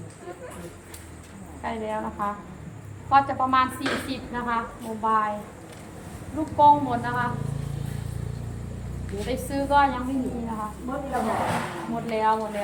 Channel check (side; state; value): both; identical; correlation 1.00